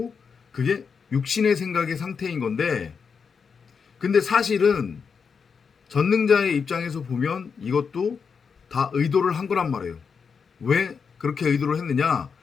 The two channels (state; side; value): quieter; right; 5.9 dB